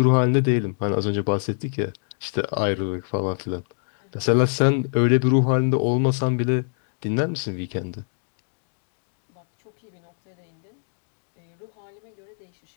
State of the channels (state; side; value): silent; right; digital silence